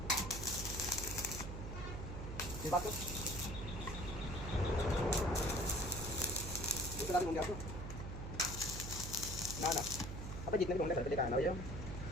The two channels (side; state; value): right; noise; hum, 6 dB below the sound